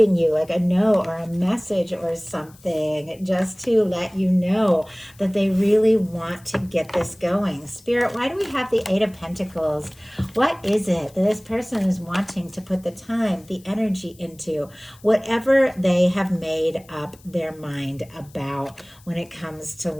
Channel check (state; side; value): noise; left; hiss, 27 dB below the sound